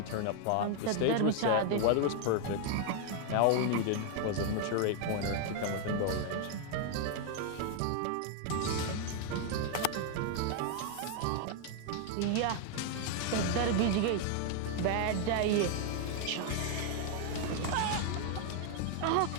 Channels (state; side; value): different; both; correlation 0.00